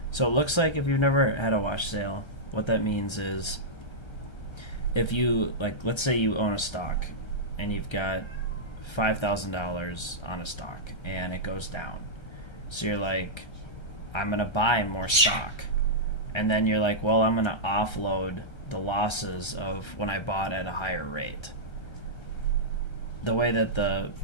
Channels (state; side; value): late; right; 1.3 ms